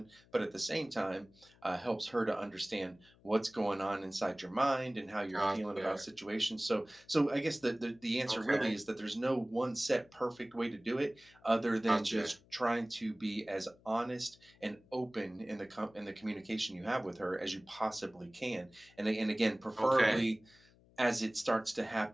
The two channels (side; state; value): left; noise; hum, 28 dB below the sound